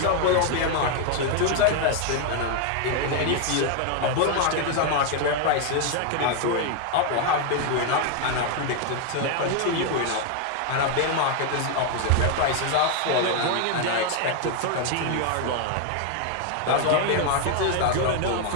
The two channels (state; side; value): different; both; correlation 0.01